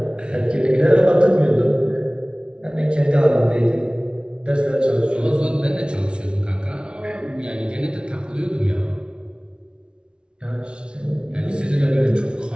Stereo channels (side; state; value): left; late; 0.056 ms